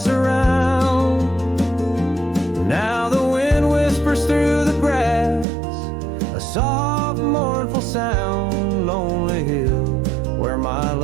around. Now the wind whispers through the grass, a soft, mournful sound. Lonely hill, where my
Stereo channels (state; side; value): drops out; left; at 5.5 s